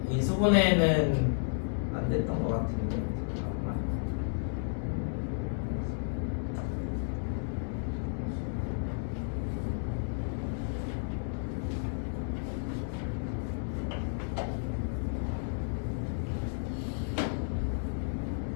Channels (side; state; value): right; silent; digital silence